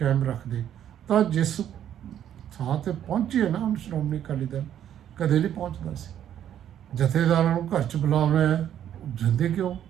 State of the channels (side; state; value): left; quieter; 10.4 dB